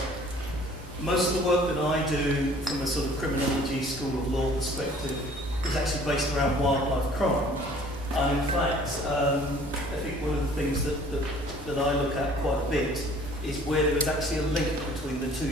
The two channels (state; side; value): normal; both; correlation 0.53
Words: Most of the work that I do from a sort of criminology, school of law perspective is actually based around wildlife crime. And in fact, I think one of the things that I look at quite a bit is where there is actually a link between the